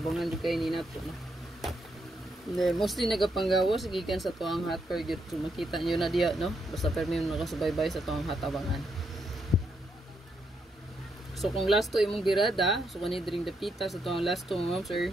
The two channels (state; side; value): normal; both; correlation 0.79